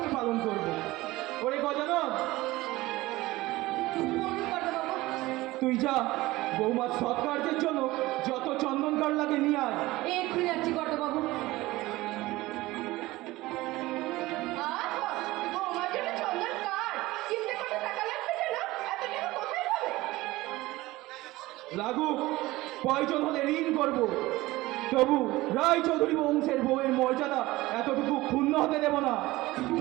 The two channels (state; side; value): quieter; left; 18.9 dB